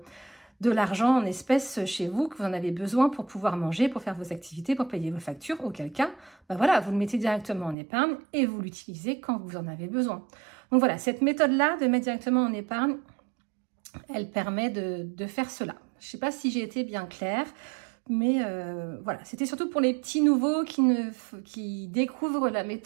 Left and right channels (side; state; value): left; drops out; at 7.8 s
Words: de l'argent en espèces chez vous, que vous en avez besoin pour pouvoir manger, pour faire vos activités, pour payer vos factures, auquel cas, voilà, vous le mettez directement en épargne et vous l'utilisez quand vous en avez besoin. Donc voilà, cette méthode-là de mettre directement en épargne, elle permet de faire cela. Je ne sais pas si j'ai été bien claire, mais voilà, c'était surtout pour les petits nouveaux qui découvrent la